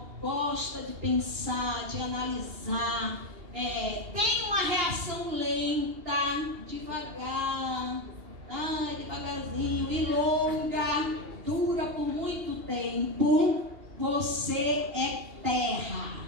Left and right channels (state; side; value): late; left; 2.8 ms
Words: gosta de pensar, de analisar, tem uma reação lenta, devagar, devagarzinho e longa, dura por muito tempo, você é terra.